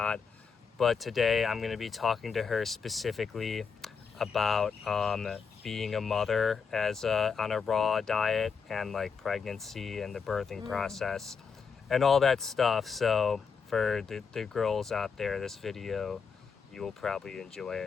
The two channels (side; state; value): right; quieter; 5.9 dB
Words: But today I'm going to be talking to her specifically about being a mother on a raw diet and like pregnancy and the birthing process and all that stuff. So for the girls out there, this video, you will probably enjoy